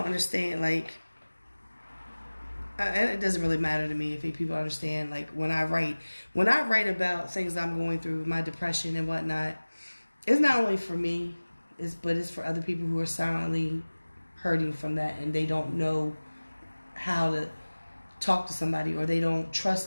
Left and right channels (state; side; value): inverted; both; correlation -1.00